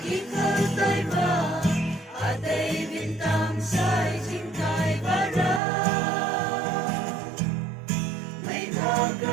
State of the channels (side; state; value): left; drops out; at 5.6 s